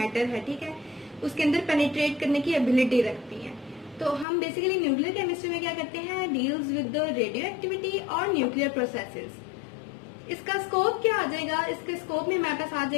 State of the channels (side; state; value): right; drops out; at 4.2 s